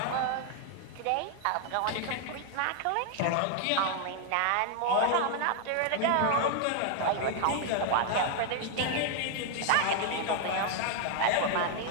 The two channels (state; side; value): different; both; correlation 0.00